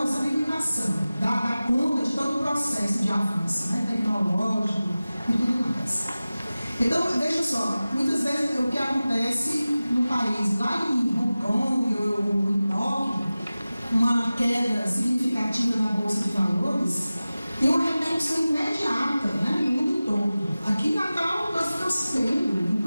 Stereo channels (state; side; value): inverted; both; correlation -0.97